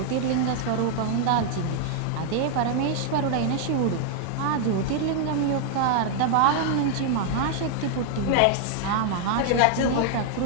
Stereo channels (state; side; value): different; both; correlation 0.00